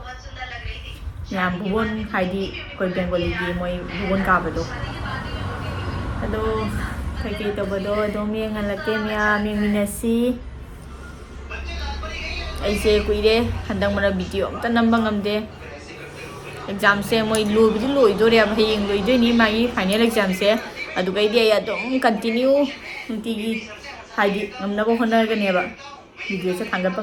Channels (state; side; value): identical; both; correlation 1.00